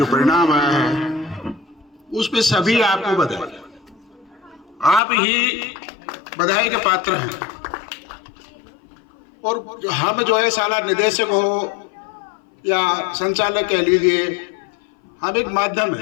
परिणाम आया है, उस पे सभी आपको बधाई। आप ही बधाई के पात्र हैं। और हम जो है साला निदेशक हो या संचालक कह लीजिए, हम एक माध्यम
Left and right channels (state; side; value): drops out; right; at 5.0 s